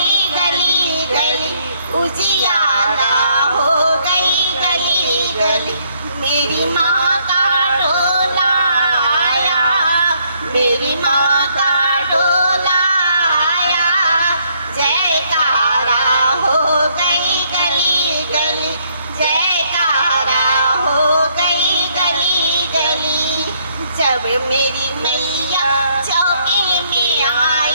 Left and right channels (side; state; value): both; inverted; correlation -0.69